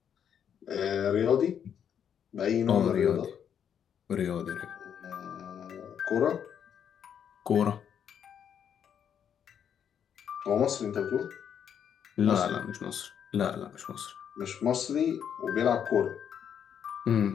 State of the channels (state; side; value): quieter; right; 8.4 dB